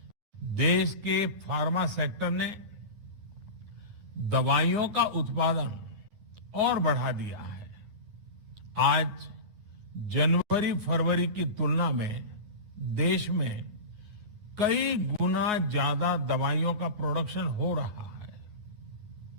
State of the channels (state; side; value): late; left; 9.5 ms